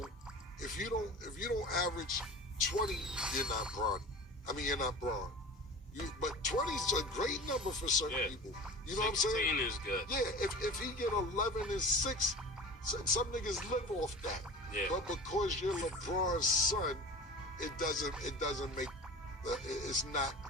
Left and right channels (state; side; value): normal; both; correlation 0.36